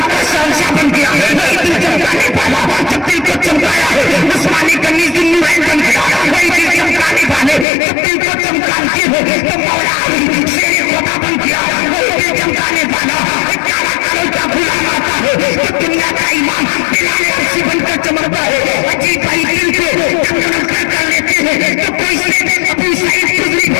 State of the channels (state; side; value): drops out; right; at 7.7 s